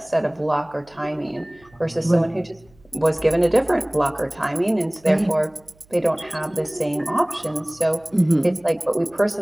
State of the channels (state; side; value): noise; right; hum, 30 dB below the sound